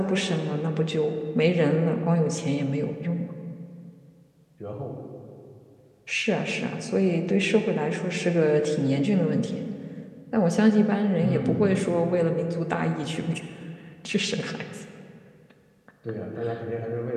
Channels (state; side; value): identical; both; correlation 1.00